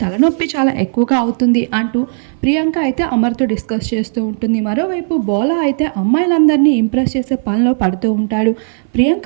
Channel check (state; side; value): silent; left; 59 dB below the other